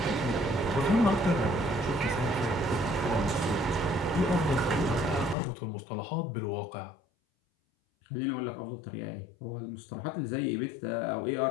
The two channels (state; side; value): drops out; right; at 5.4 s